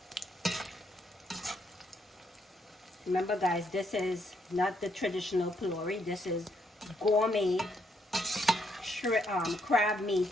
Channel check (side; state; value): both; normal; correlation 0.74